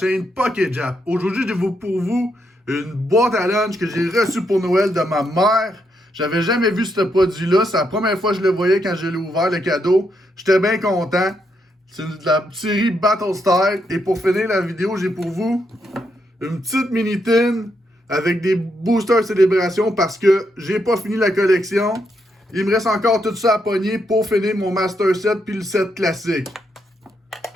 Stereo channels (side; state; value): both; normal; correlation 0.79